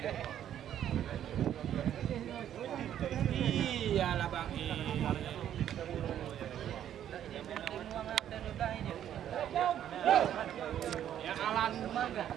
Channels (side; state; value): left; quieter; 10.6 dB